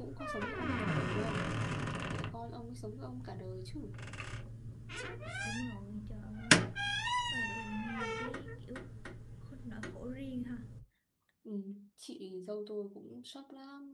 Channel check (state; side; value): identical; both; correlation 1.00